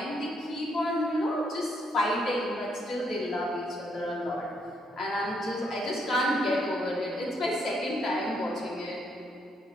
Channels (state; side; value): normal; both; correlation 0.74